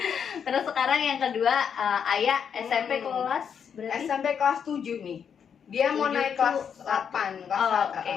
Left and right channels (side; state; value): right; quieter; 7.4 dB